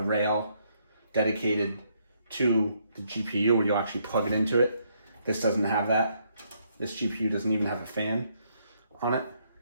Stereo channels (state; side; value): inverted; both; correlation -0.73